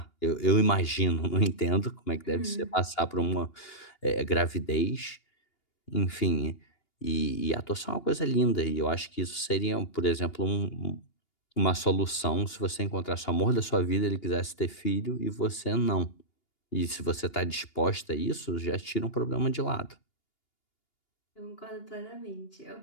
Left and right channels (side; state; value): right; late; 2.8 ms